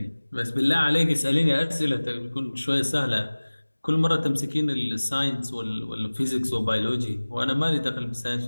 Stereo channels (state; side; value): inverted; both; correlation -1.00